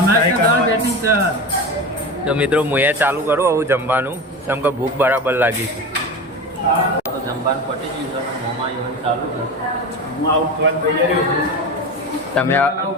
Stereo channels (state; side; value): normal; both; correlation 0.26